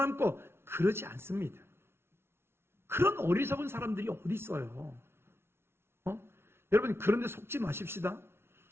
그러지 않습니다. 그런 어리석은 사람들이 어디 있어요? 여러분, 그런데 속지 마십시다.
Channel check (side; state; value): left; late; 0.12 ms